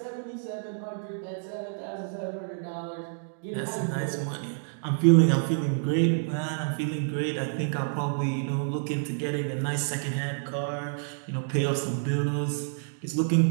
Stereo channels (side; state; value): left; silent; digital silence